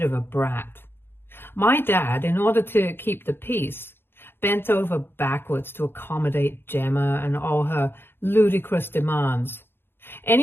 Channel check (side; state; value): right; late; 0.11 ms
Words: of a brat. My dad, in order to keep the peace, bent over backwards to accommodate Gemma and all her ludicrous demands.